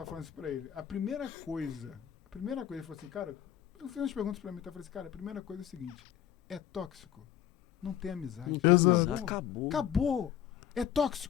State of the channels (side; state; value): right; quieter; 10.7 dB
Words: falando isso pra ele. A primeira coisa, ele falou assim, cara, eu fiz umas perguntas pra mim, eu falei assim, cara, a primeira coisa é o seguinte, é tóxico, não tem amizade. Acabou. É